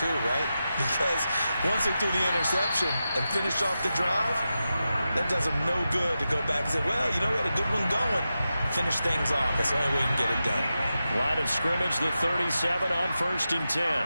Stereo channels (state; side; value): inverted; both; correlation -0.91